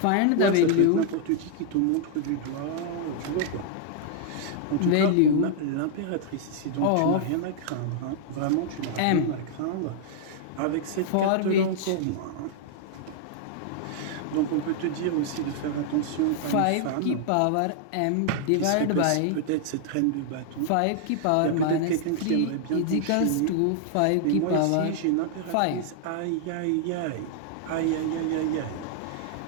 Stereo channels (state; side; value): different; both; correlation -0.01